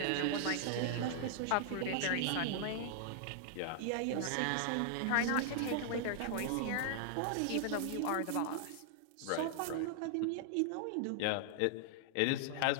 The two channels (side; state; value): both; different; correlation 0.00